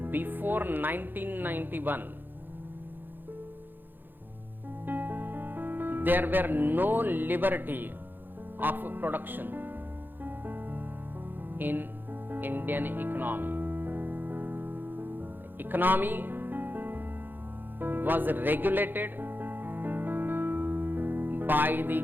before 1991, there were no liberty of production in Indian economy. The economy was regulated by the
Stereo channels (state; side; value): late; left; 0.093 ms